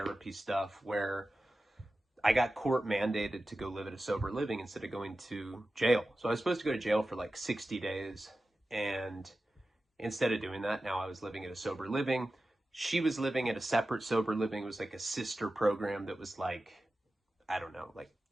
stuff where I got court mandated to go live at a sober living instead of going to jail. So I was supposed to go to jail for like 60 days. And instead of doing that, now I was living at a sober living. She was living at a separate sober living. It was like a sister program that was like, I don't know, like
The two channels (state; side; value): normal; both; correlation 0.94